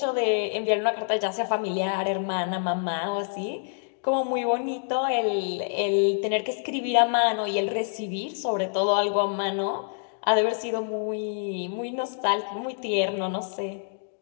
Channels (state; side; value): silent; right; digital silence